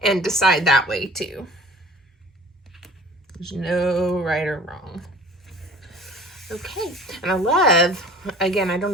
and decide that way too. There's no right or wrong. Okay, and I love, again, I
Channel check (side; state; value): both; normal; correlation 0.45